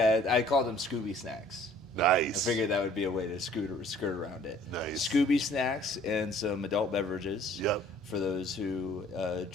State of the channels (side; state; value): both; normal; correlation 0.55